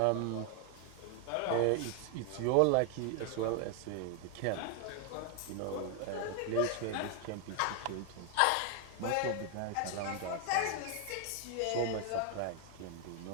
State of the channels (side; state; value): both; different; correlation 0.00